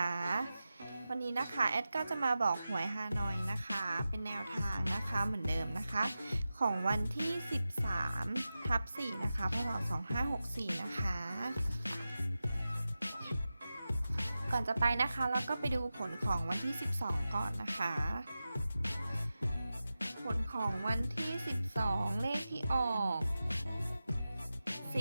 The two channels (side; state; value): both; inverted; correlation -0.93